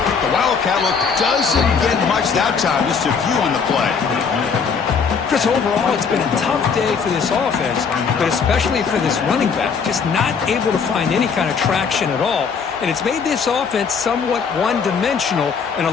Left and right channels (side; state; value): right; quieter; 5.9 dB